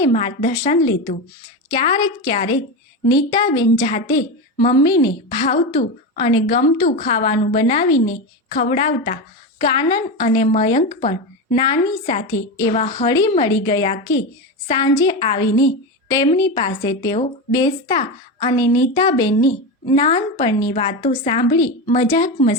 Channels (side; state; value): both; normal; correlation 0.18